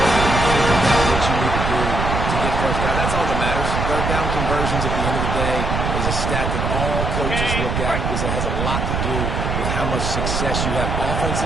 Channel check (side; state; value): right; noise; rumble, 1 dB below the sound